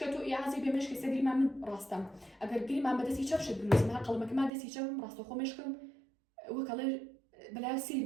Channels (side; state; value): left; drops out; at 4.5 s